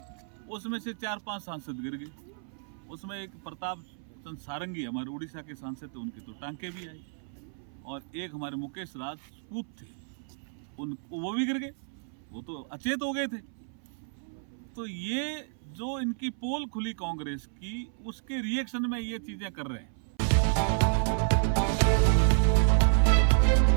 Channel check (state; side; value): silent; left; 57 dB below the other